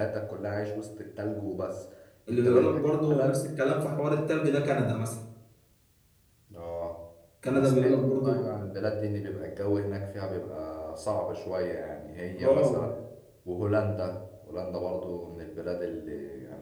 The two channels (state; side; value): identical; both; correlation 1.00